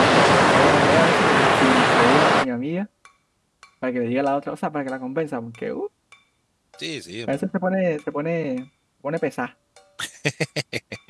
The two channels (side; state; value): both; identical; correlation 1.00